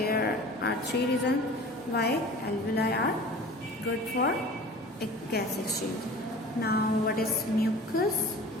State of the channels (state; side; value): normal; both; correlation 0.41